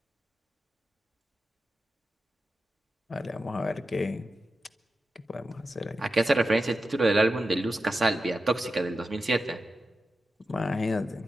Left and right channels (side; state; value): both; normal; correlation 0.90